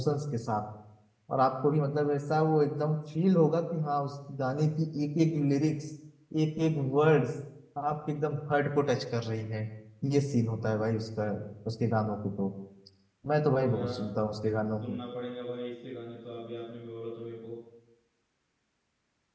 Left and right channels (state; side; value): identical; both; correlation 1.00